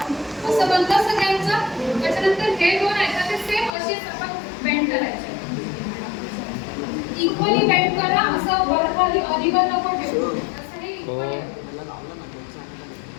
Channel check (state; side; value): drops out; right; at 3.7 s